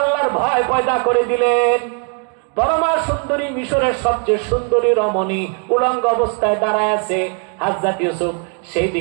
আল্লাহর ভয় পয়দা করে দিলেন। পরমা সুন্দরী, মিশরের সবচেয়ে সুন্দরী রমণী উলঙ্গ অবস্থায় দাঁড়ায় আছে। হযরত ইউসুফ সেই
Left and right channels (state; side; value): quieter; left; 39.7 dB